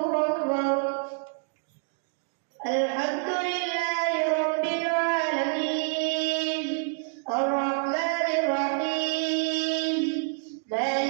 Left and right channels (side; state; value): left; silent; 55 dB below the other